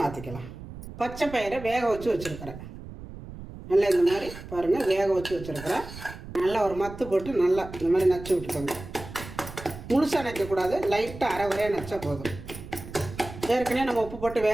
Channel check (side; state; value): right; noise; rumble, 13 dB below the sound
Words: மாற்றிக்கலாம். பச்சை பயிரை வேக வச்சு வச்சுருக்கிறேன். நல்லா இந்த மாதிரி பாருங்கள் வேக வச்சு வச்சுருக்கிறேன். நல்லா ஒரு மத்து போட்டு நல்லா இந்த மாதிரி நச்சு விட்டுக்கோங்க. முழுசாக நச்சக்கூடாது, லைட்டாக அரை வரையாக நச்சா போதும். ஏற்கனவே நம்ம உப்பு போட்டு